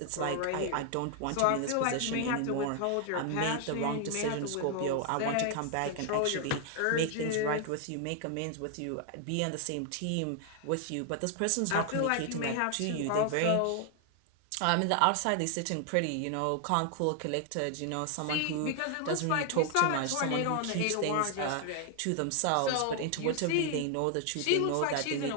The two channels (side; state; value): both; different; correlation 0.00